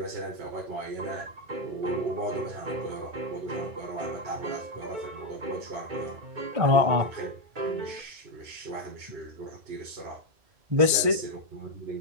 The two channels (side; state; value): left; late; 1.6 ms